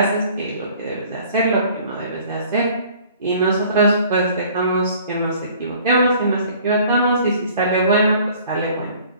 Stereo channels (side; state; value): both; inverted; correlation -0.53